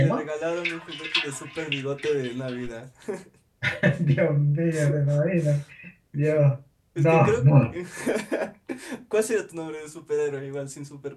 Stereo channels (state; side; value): identical; both; correlation 1.00